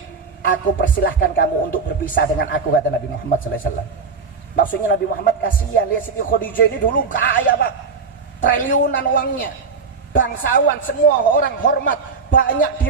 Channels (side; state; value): left; quieter; 4.9 dB